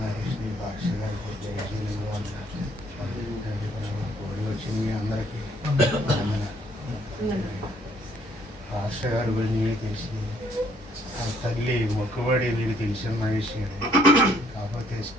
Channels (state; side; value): normal; both; correlation 0.65